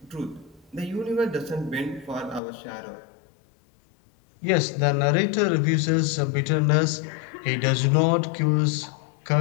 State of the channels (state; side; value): drops out; right; at 2.4 s